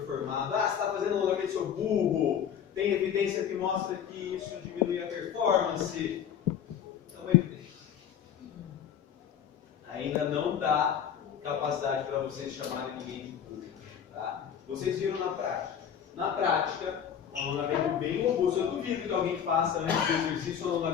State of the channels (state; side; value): quieter; right; 8.5 dB